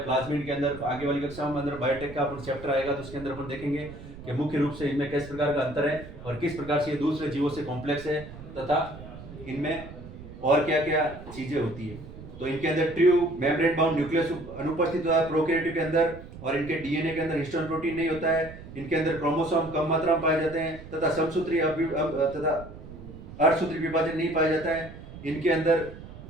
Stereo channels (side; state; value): right; noise; rumble, 15 dB below the sound